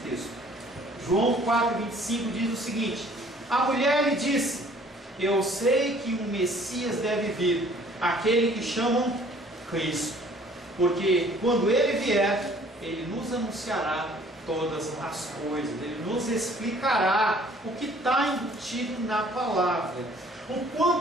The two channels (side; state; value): both; normal; correlation 0.56